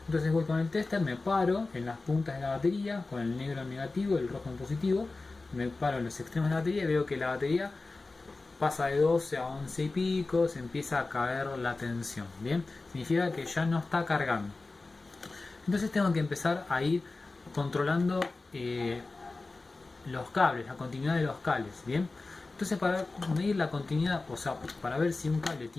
Entonces voy con el tester, me paro en las puntas de la batería, con el negro en negativo y el rojo en positivo, me paro en los extremos de la batería y veo que la batería pasa de 12 a 11 y pico, se empieza a caer la tensión. Bien, significa que ya no está cargando. Entonces tengo que empezar a ir controlando los cables, la continuidad de los cables. Bien, entonces para medir la continuidad, o sea, para ver si un cable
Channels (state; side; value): quieter; right; 3.5 dB